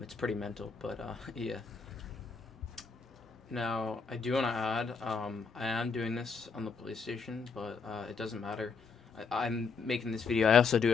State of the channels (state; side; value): quieter; right; 5.1 dB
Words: pretty mental, but yeah. Now, I do want to add, I am doing this on the PlayStation, but it doesn't matter. I'm making this video. I also do